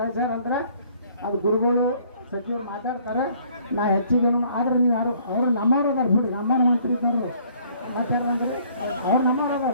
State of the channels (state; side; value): inverted; both; correlation -0.60